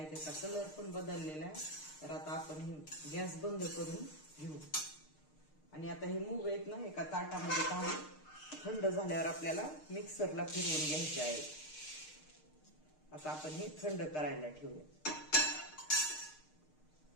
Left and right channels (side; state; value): right; late; 6.5 ms